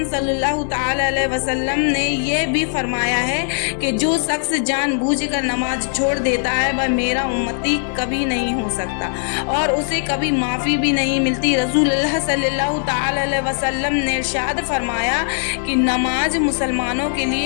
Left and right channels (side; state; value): right; silent; digital silence